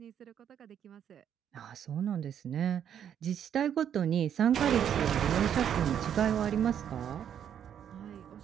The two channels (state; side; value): quieter; left; 9.1 dB